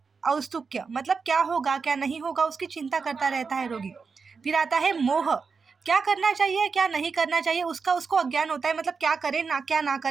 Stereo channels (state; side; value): quieter; left; 5.1 dB